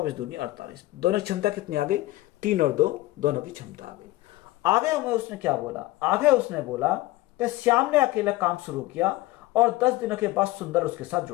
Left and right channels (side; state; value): right; quieter; 18.1 dB